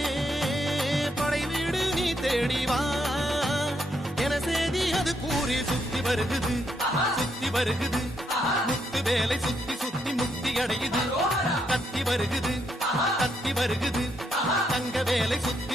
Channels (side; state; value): both; normal; correlation 0.77